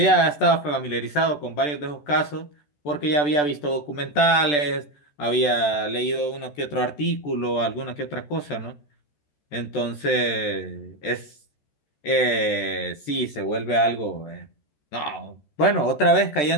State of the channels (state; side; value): late; right; 14 ms